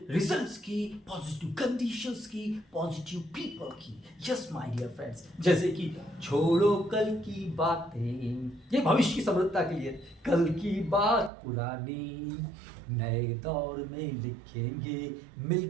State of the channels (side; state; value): left; drops out; at 11.3 s